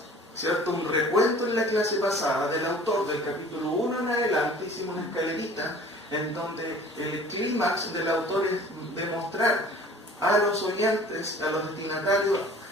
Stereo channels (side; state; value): both; normal; correlation 0.48